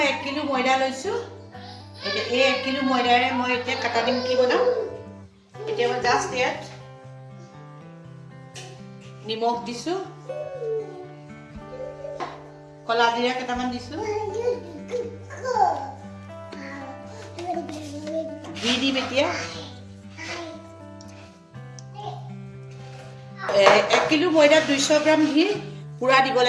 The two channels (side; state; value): both; identical; correlation 1.00